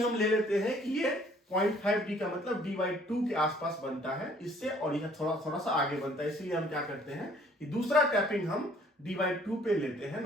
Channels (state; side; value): normal; both; correlation 0.59